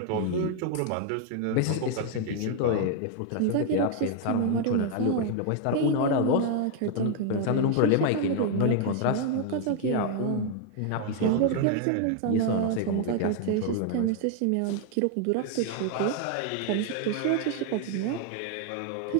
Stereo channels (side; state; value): both; different; correlation 0.00